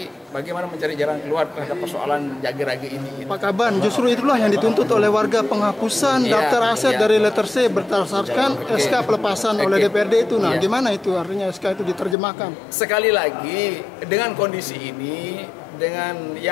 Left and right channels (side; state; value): right; drops out; at 12.2 s